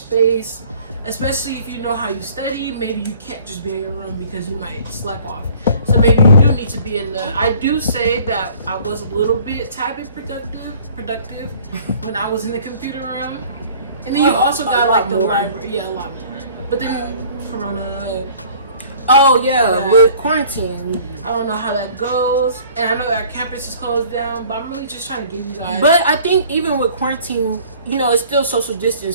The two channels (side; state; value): both; inverted; correlation -0.52